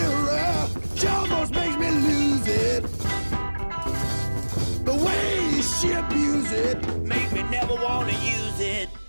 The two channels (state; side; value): inverted; both; correlation -1.00